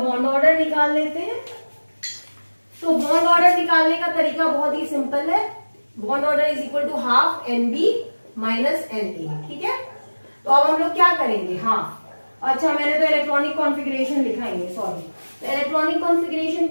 ऑर्डर निकाल लेते हैं। तो बॉन्ड ऑर्डर निकालने का तरीका बहुत ही सिंपल है। Bond order is equal to ½ NB -NA, ठीक है। तो अब हम लोग क्या करेंगे, अच्छा मैंने तो इलेक्ट्रॉनिक कॉन्फ़िगरेशन लिखा ही है, सॉरी। तो इलेक्ट्रॉनिक कॉन्फ़िगरेशन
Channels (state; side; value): inverted; both; correlation -1.00